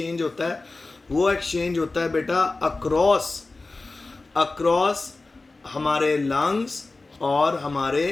होता है वो एक्सचेंज होता है बेटा अक्रॉस हमारे लंग्स और हमारे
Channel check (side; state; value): right; quieter; 3.4 dB